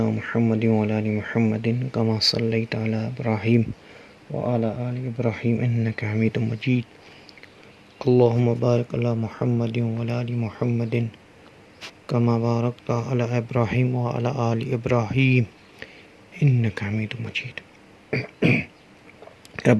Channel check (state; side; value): identical; both; correlation 1.00